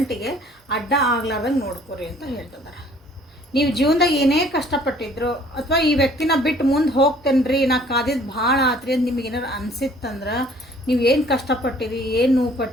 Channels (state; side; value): normal; both; correlation 0.56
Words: ಅಡ್ಡ ಆಗ್ಲಾರ್ದಂಗೆ ನೋಡ್ಕೊರಿ ಅಂತ ಹೇಳ್ತಿದ್ದಾರೆ. ನೀವು ಜೀವನದಾಗ ಏನೇ ಕಷ್ಟಪಟ್ಟಿದ್ರು ಅಥವಾ ಈ ವ್ಯಕ್ತಿನ ಬಿಟ್ಟು ಮುಂದೆ ಹೋಗ್ತೇನ್ರಿ ನಾ ಕಾದಿದ್ದು ಭಾಳ ಆತ್ರಿ ಅಂತ ನಿಮಗೆ ಏನಾರು ಅನಿಸಿತ್ತಂದ್ರೆ ನೀವು ಏನು ಕಷ್ಟಪಟ್ಟಿರಿ, ಏನು ನೋವು